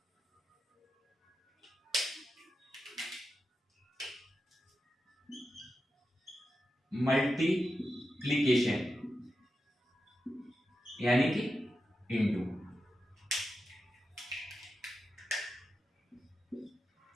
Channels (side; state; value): both; normal; correlation 0.89